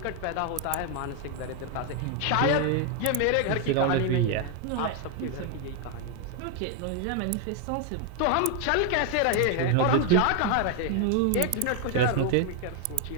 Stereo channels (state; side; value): different; both; correlation 0.01